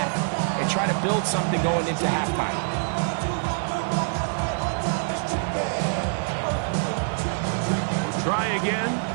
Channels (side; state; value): left; silent; digital silence